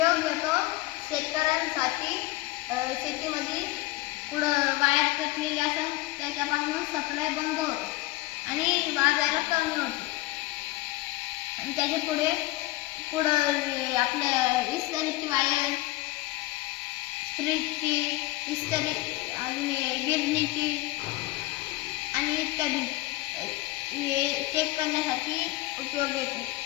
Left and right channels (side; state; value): right; quieter; 19.0 dB